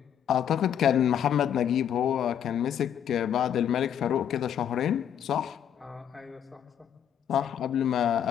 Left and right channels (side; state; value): right; quieter; 9.3 dB